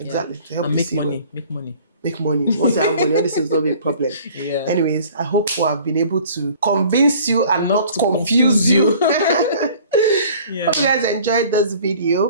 to help and you make see money. Make money. Make money. Once you have money, all this is not be a problem. Yeah. Anyways, I hope we have been able to convince you and not confuse you. Yeah. Hope you guys enjoyed this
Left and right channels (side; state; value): both; inverted; correlation -0.50